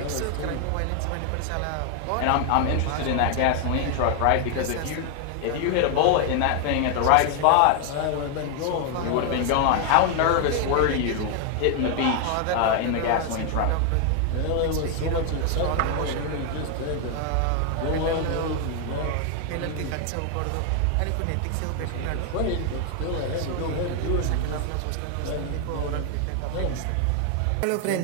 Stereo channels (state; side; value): different; both; correlation 0.00